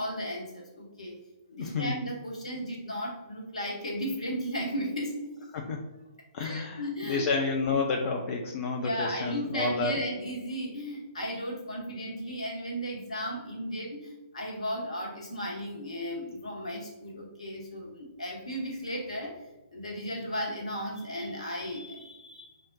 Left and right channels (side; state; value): both; inverted; correlation -0.47